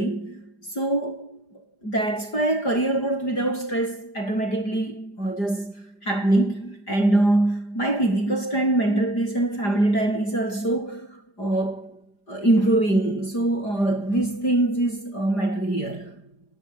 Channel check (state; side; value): late; right; 5.0 ms